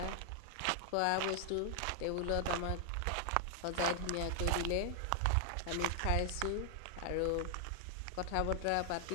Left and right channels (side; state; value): both; different; correlation 0.00